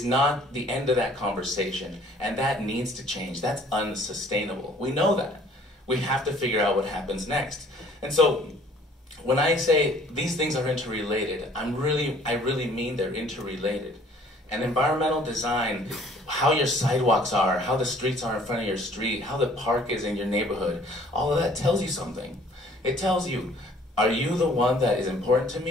not the end of that conversation, and that needs to change. That's unsustainable. We know that. We have to figure out what happens next. And so when I say these things are interrelated, I really mean they're interrelated. And environmental design, how your sidewalks are, how the streets are in front of your street, how the park is in your neighborhood, all of that tells you something. It tells you, are you the one that is important to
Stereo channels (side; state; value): both; normal; correlation 0.56